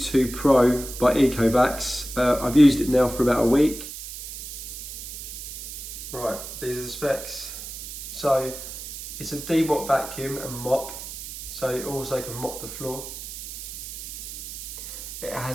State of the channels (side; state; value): right; noise; hiss, 9 dB below the sound